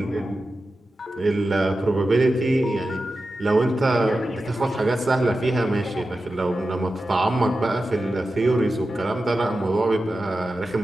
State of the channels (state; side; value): normal; both; correlation 0.92